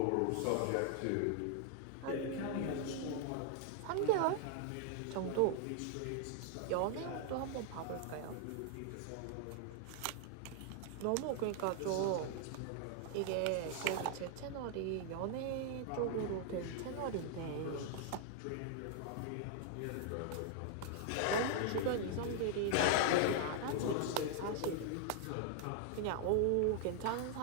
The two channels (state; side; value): different; both; correlation 0.00